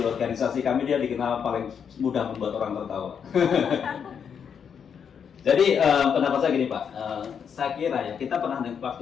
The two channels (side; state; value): right; quieter; 7.3 dB